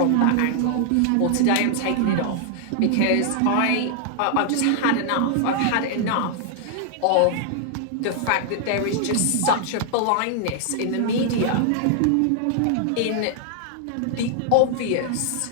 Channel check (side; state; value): both; different; correlation -0.01